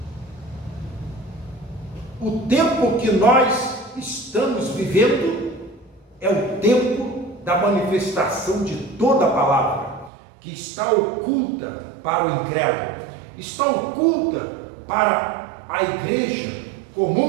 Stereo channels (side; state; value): left; drops out; at 10.1 s